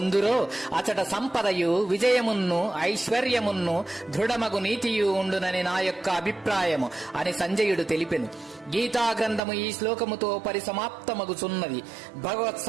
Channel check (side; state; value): left; drops out; at 9.4 s